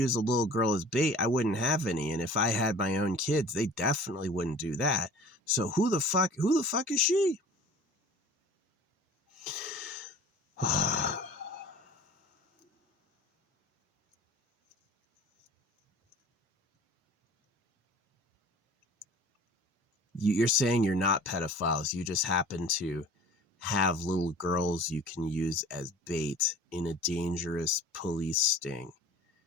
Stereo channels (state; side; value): normal; both; correlation 0.44